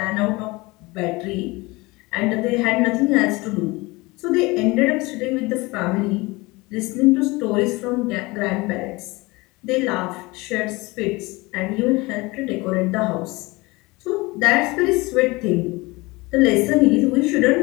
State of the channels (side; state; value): right; quieter; 23.3 dB